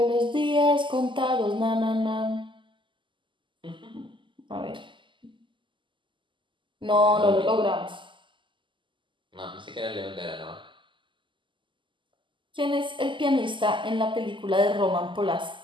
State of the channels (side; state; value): left; late; 0.24 ms